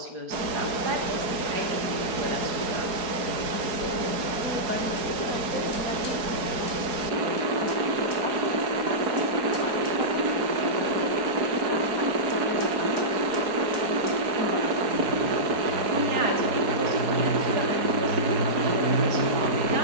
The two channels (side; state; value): left; late; 4.7 ms